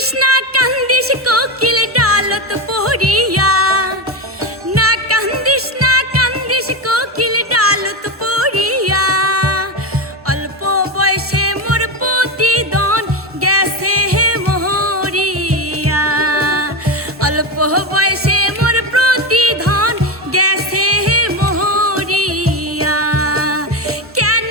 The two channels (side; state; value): both; normal; correlation 0.15